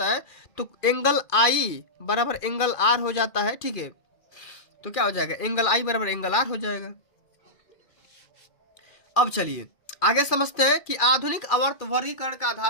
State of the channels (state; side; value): late; right; 2.4 ms